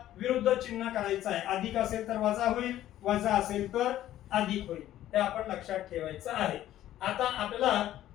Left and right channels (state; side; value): quieter; right; 13.1 dB